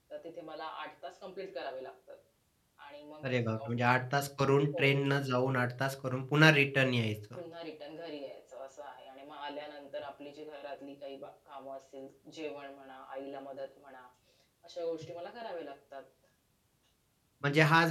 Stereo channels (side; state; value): both; identical; correlation 1.00